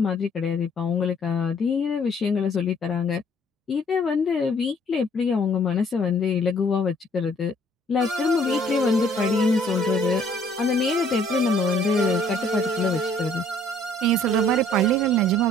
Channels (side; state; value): both; normal; correlation 0.60